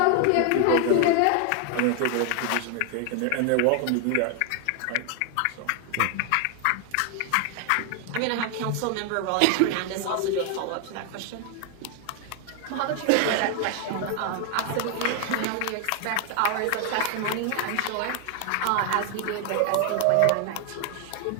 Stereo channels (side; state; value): both; different; correlation 0.01